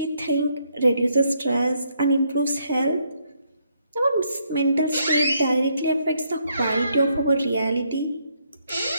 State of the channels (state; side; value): inverted; both; correlation -0.74